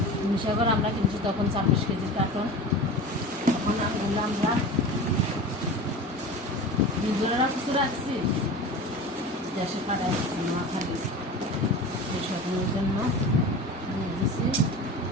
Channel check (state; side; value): normal; both; correlation 0.33